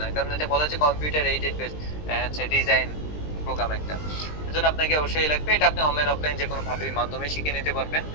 না, কারণ এটা বলা হচ্ছে কম্পিউটার এইডেড বেস হচ্ছে ডিজাইন প্রোগ্রাম একটা। এজন্য আপনাকে অবশ্যই লাগবে। এটা আপনি অনলাইন অফলাইন যে কোনো ভাবে মাধ্যমে শিখে নিতে পারবেন।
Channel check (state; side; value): late; right; 20 ms